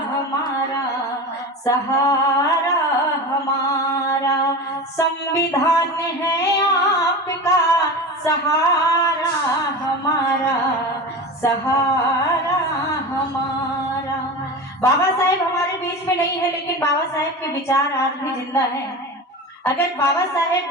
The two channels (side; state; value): both; normal; correlation 0.29